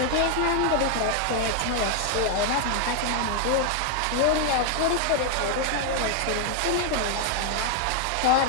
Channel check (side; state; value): both; different; correlation 0.00